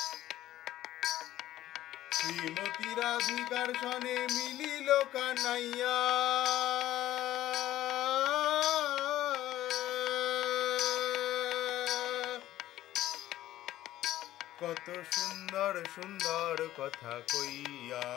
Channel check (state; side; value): quieter; right; 14.0 dB